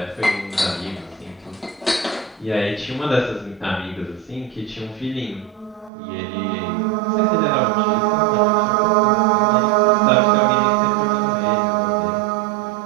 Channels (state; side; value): drops out; left; at 5.9 s